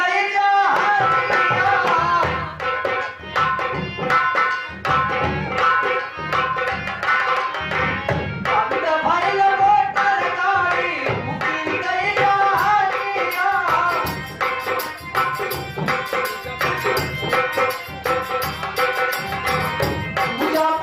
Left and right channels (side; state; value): both; identical; correlation 1.00